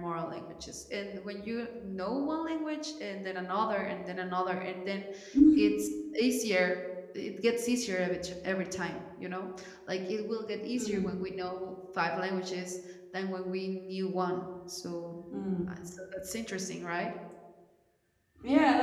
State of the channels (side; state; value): both; identical; correlation 1.00